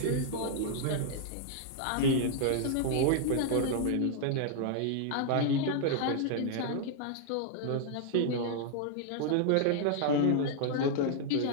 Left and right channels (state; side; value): different; both; correlation -0.01